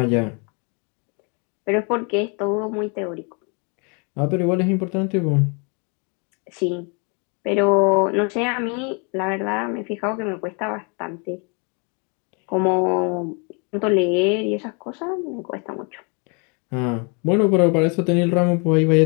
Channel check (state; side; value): quieter; right; 34.9 dB